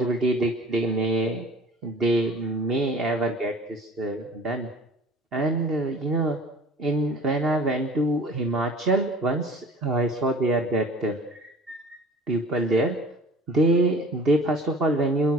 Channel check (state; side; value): normal; both; correlation 0.45